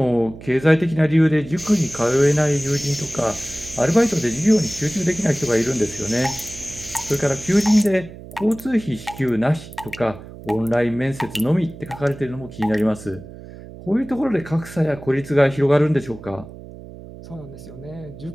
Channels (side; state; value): right; noise; hum, 16 dB below the sound